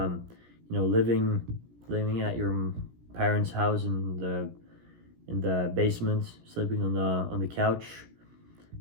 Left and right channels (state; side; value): late; left; 17 ms